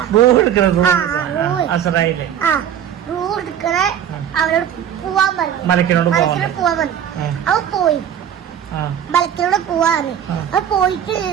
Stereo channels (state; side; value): quieter; left; 9.4 dB